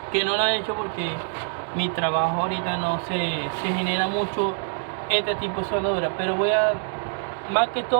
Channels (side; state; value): left; silent; digital silence